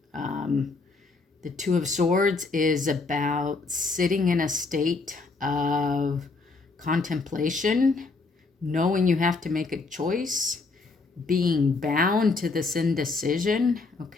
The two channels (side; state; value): right; quieter; 3.9 dB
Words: The Two of Swords is about sitting in a state of contemplation, knowing you have to make a choice, being bound to this indecision,